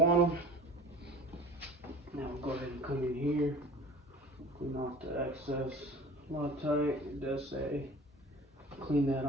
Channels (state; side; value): normal; both; correlation 0.42